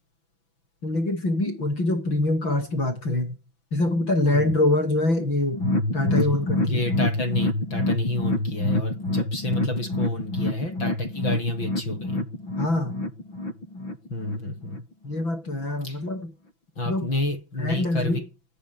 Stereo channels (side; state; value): right; late; 6.0 ms